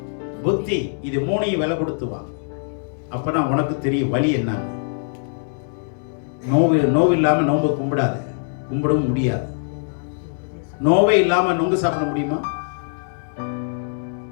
புத்தி, இது மூணையும் விலை கொடுத்து வாங்க. அப்பதான் உனக்கு தெரியும் வழி என்னன்னு. நோவு இல்லாம நோம்பு கும்பிடாத, கும்பிடவும் முடியாது. நோவே இல்லாம நொங்கு சாப்பிட முடியுமா?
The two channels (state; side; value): silent; right; 64 dB below the other